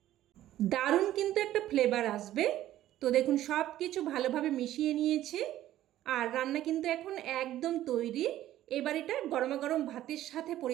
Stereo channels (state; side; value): quieter; left; 13.4 dB